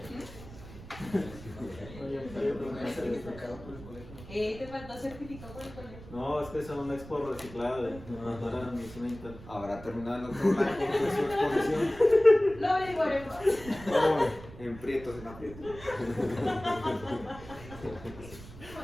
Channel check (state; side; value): noise; right; rumble, 16 dB below the sound